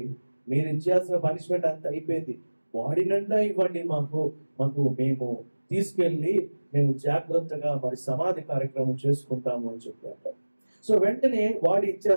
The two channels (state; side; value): inverted; both; correlation -1.00